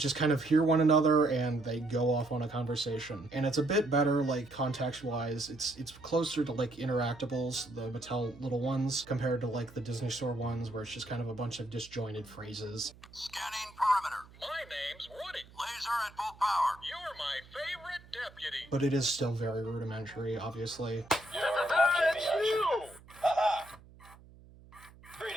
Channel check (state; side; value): noise; right; hum, 23 dB below the sound